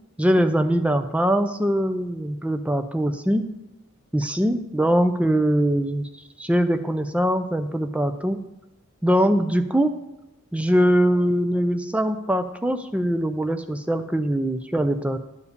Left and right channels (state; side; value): normal; both; correlation 0.91